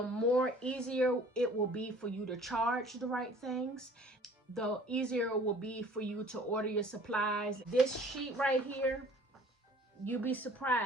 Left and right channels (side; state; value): both; normal; correlation 0.51